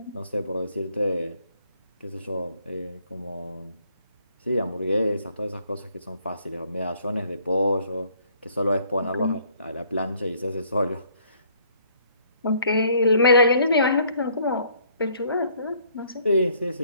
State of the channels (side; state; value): both; inverted; correlation -0.63